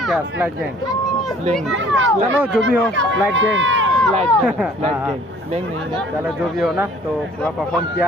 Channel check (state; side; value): normal; both; correlation 0.54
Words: क्या स्लाइड गैंग चलो जो भी हो स्लाइड गैंग स्लाइड गैंग नहीं है चलो जो भी हो ना तो पूरा परफॉर्म किया